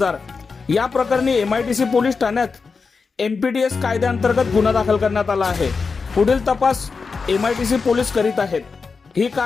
या प्रकरणी MIDC पोलीस ठाण्यात MPDS कायद्याअंतर्गत गुन्हा दाखल करण्यात आला आहे. पुढील तपास MIDC पोलीस करीत आहेत. ही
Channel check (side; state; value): right; quieter; 4.8 dB